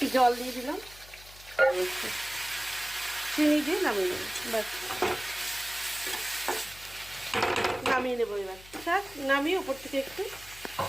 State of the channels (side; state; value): left; noise; hum, 20 dB below the sound